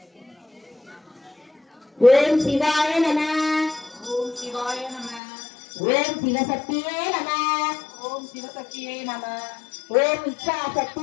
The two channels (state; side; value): drops out; right; at 5.2 s